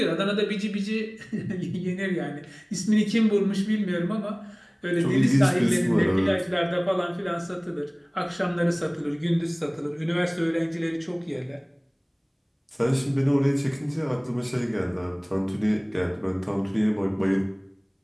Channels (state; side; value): identical; both; correlation 1.00